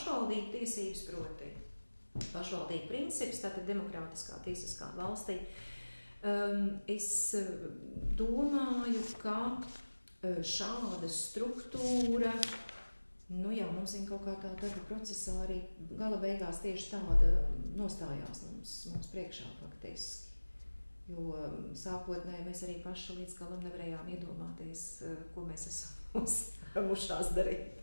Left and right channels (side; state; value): both; inverted; correlation -1.00